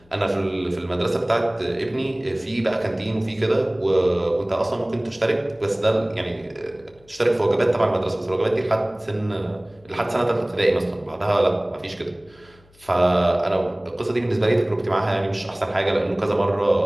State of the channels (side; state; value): left; noise; hum, 29 dB below the sound